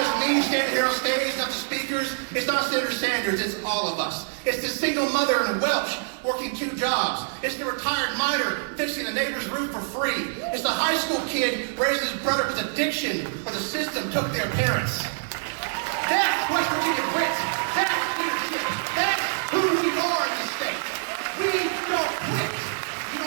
me standing here on stage, it's not the speakers, it's not Senator Sanders, it's all of us. It's the single mother in Welch working 2 jobs. It's the retired miner fixing the neighbor's roof for free. It's the high school kid raising his brother with addiction or the system took their parents. That's West Virginia grit. That's leadership. That's who we are in this state. We don't quit. You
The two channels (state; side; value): silent; left; digital silence